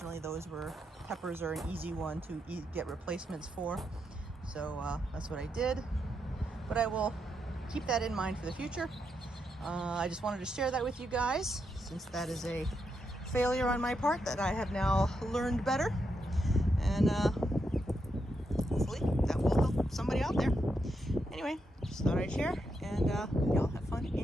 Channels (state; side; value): normal; both; correlation 0.82